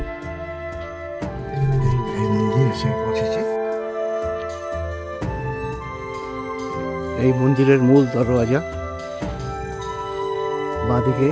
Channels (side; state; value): both; identical; correlation 1.00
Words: এই মন্দির এসে পৌঁছেছে। এই মন্দিরের মূল দরওয়াজা, বাঁদিকে